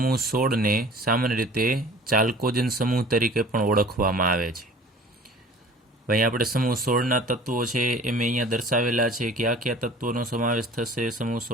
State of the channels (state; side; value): normal; both; correlation 0.46